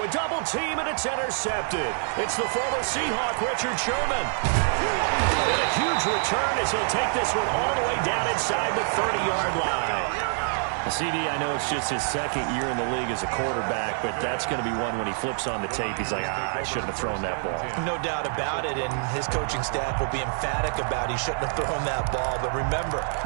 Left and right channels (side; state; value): left; silent; 59 dB below the other